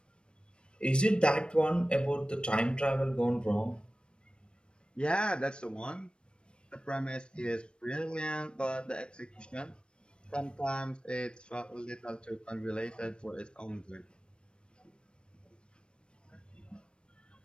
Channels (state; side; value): late; right; 0.055 ms